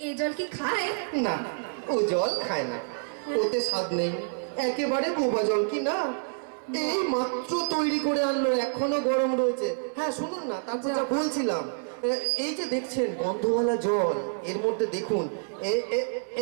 এই জল কি খায়? না, ও জল খায় না, ওতে স্বাদ নেই, একেবারে বোবা জল। কি না, এই মাত্র তৈরি করে আনলো, এখনো গরম রয়েছে। হ্যাঁ শুনুন না, তারপর যা বলছিলাম, এই যে দেখছেন গন্ধওয়ালা জল, এর মধ্যে দেখুন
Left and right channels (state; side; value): silent; left; 59 dB below the other